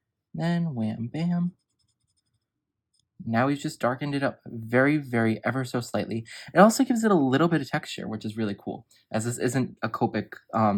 Then wham bam. Now we've just darkened it up very, very ever so slightly. It also gives it a little bit of texture, which is really cool, as this isn't a Copic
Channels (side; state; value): both; identical; correlation 1.00